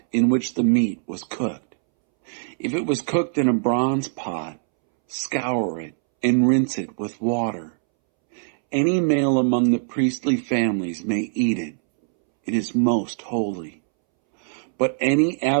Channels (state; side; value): silent; left; 64 dB below the other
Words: in which the meat was cooked. If it was cooked in a bronze pot, scour it and rinse it with water. Any male among the priestly families may eat it. It is most holy. But any